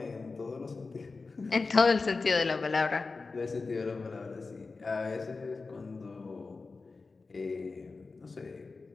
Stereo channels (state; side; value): quieter; right; 4.0 dB